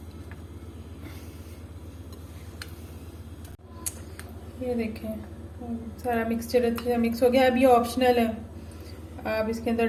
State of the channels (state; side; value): identical; both; correlation 1.00